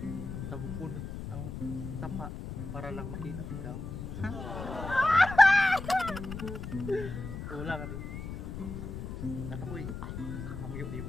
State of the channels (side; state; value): left; noise; rumble, 7 dB below the sound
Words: tabukon ang tapa para lang makita ikaw. Ulang ka rin. Natakoy, hamyo di